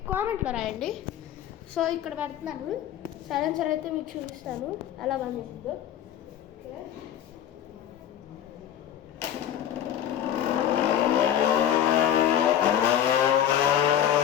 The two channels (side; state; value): right; quieter; 10.5 dB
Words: కామెంట్లో రాయండి. సో ఇక్కడ పెడుతున్నాను సైలెన్సర్ అయితే మీకు చూపిస్తాను ఎలా పనిచేస్తుందో.